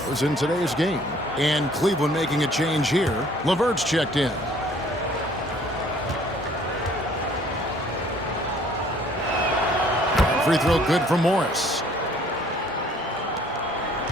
in today's game. And Cleveland making a change here. LeVert's checked in. Free throw good for Morris.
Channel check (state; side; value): normal; both; correlation 0.57